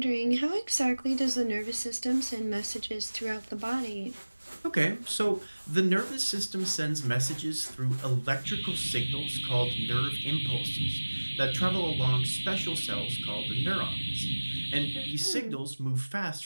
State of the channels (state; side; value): inverted; both; correlation -1.00